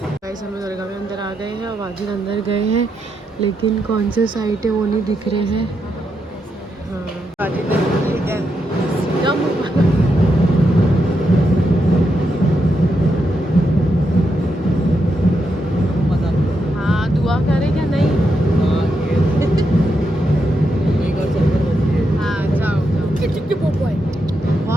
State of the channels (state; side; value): normal; both; correlation 0.83